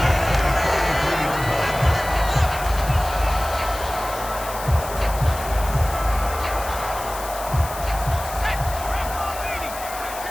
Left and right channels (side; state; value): left; noise; hiss, 12 dB below the sound